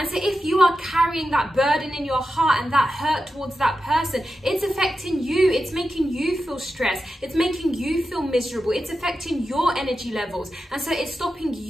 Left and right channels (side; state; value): both; normal; correlation 0.90